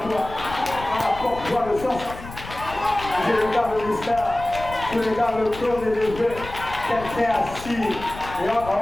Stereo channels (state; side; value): noise; left; rumble, 13 dB below the sound